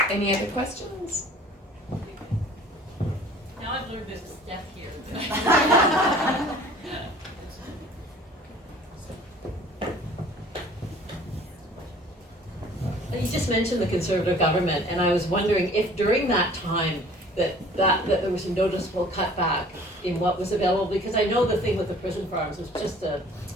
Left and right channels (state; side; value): normal; both; correlation 0.50